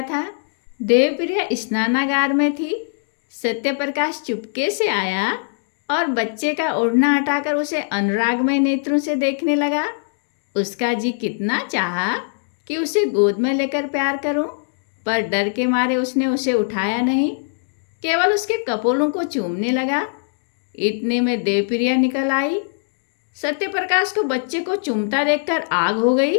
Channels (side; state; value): right; silent; digital silence